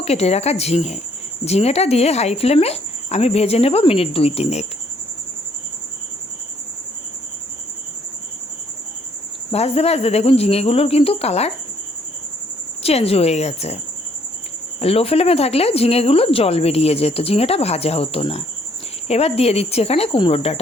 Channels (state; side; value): normal; both; correlation 0.66